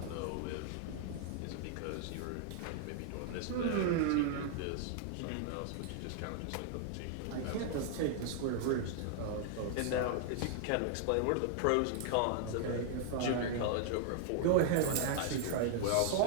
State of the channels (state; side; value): different; both; correlation -0.01